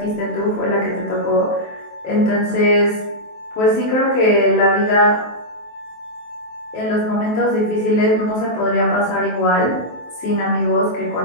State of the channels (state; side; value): late; right; 23 ms